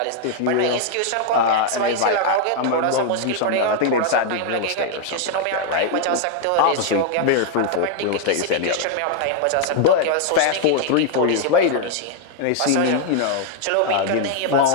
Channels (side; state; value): both; different; correlation 0.00